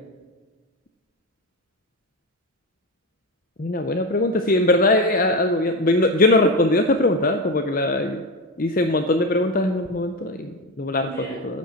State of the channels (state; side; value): normal; both; correlation 0.17